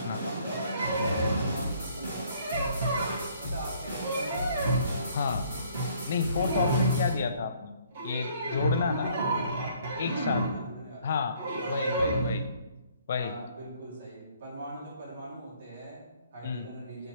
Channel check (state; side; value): inverted; both; correlation -0.61